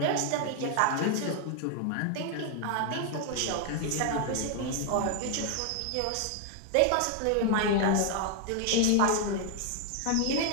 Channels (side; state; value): both; different; correlation 0.00